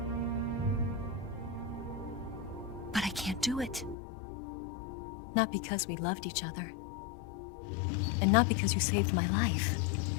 But I can't do it. Not because we loved each other. And not because you saved my life.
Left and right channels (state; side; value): drops out; right; at 4.0 s